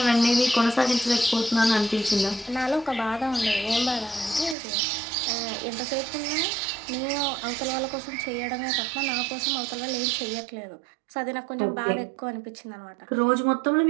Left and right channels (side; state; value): left; drops out; at 4.5 s